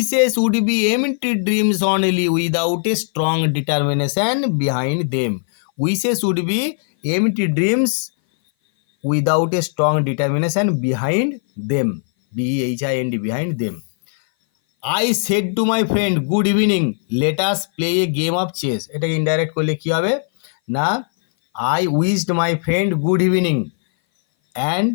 would be empty dreams only without a strong determination behind them. Wishes would be empty dreams without a strong determination behind them, BEHIND behind them. I said to my friend good evening let us play a game of chess, এটাকে ইনডাইরেক্ট করলে কী হবে না, I wished my friend good evening and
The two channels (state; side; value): silent; right; 59 dB below the other